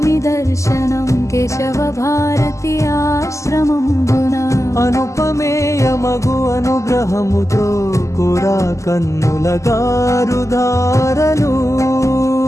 दर्शनं केशव भारती आश्रमं అనుపమేయమగు అనుగ్రహముతో కురా కన్నుల గారుధారలు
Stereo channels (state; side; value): late; right; 0.15 ms